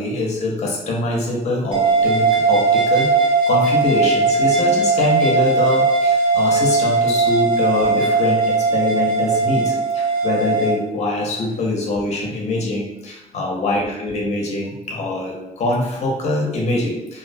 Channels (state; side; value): normal; both; correlation -0.01